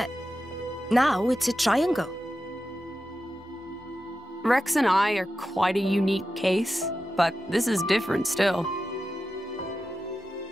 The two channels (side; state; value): both; normal; correlation 0.91